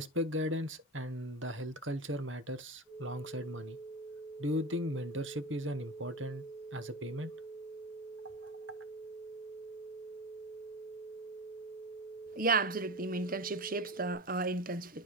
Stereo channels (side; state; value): both; normal; correlation 0.27